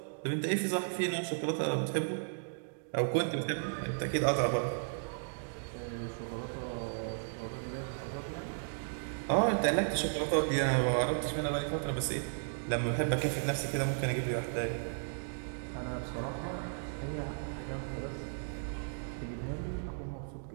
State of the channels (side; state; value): left; silent; digital silence